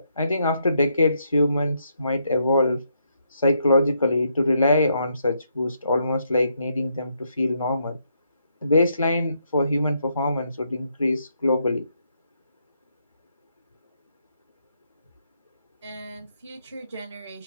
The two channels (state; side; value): inverted; both; correlation -0.76